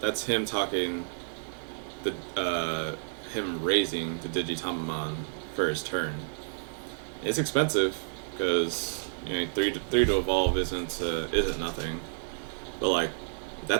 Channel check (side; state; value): left; silent; digital silence